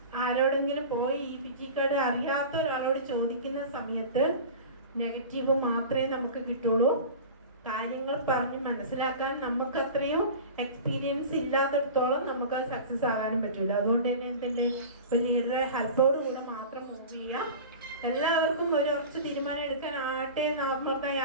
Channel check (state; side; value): inverted; both; correlation -0.35